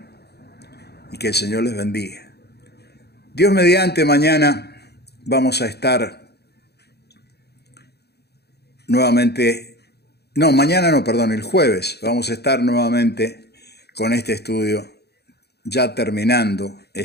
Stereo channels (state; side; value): late; right; 0.48 ms